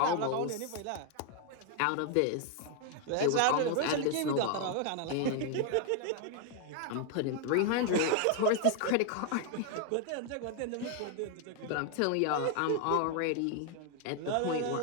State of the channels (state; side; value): different; both; correlation 0.00